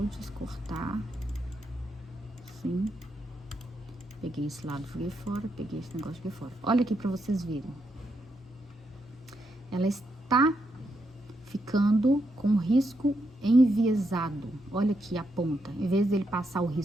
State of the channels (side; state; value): both; normal; correlation 0.81